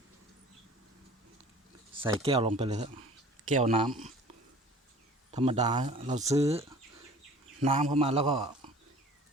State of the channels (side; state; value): both; normal; correlation 0.46